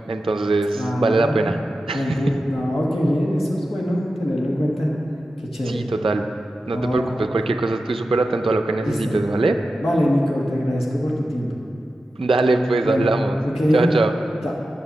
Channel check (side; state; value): both; normal; correlation 0.92